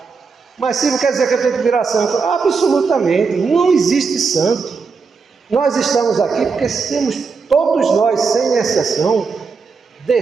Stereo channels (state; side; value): quieter; left; 5.0 dB